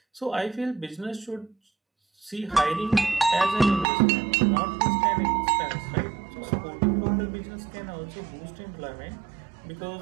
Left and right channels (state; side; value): drops out; left; at 3.9 s